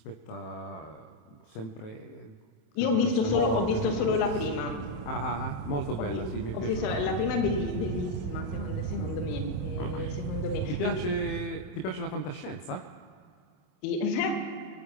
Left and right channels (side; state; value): right; late; 27 ms